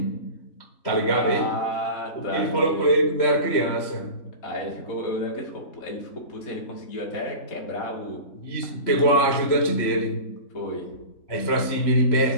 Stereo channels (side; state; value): right; late; 3.1 ms